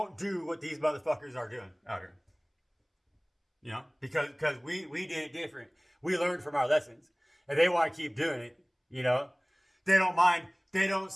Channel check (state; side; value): identical; both; correlation 1.00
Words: do what these motherfuckers are doing out here. You know, because we did it different. We learned from our lessons, and they want to keep doing it. You know, they don't mind. They don't